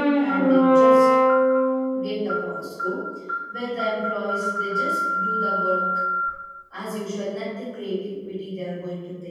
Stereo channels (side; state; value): both; identical; correlation 1.00